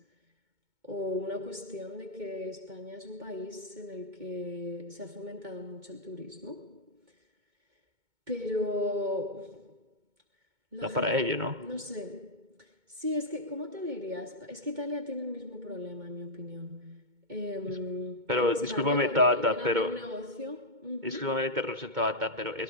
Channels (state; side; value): late; left; 2.2 ms